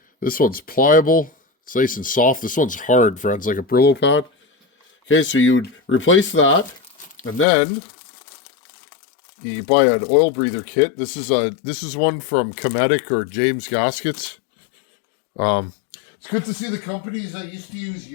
this one's pliable. It's nice and soft. This one's hard, friends, like a Brillo pad. Okay, so you would replace that, and then you buy an oil breather kit. This is one from Cometic or James Gaskets. It's good to see the companies I used to use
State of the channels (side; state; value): right; drops out; at 7.5 s